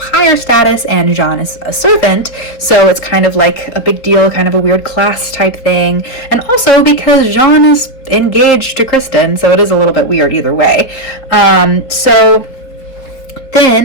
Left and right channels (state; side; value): late; right; 4.2 ms